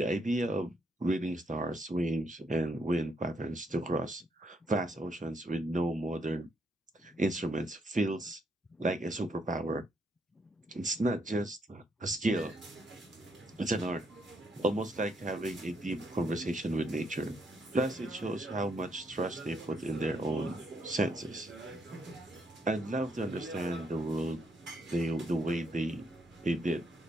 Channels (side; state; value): both; normal; correlation 0.75